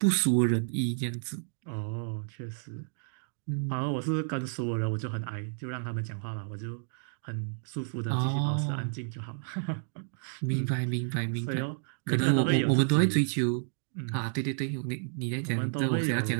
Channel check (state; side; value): silent; left; digital silence